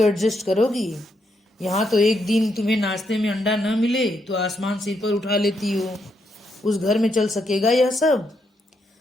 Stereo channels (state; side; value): normal; both; correlation 0.78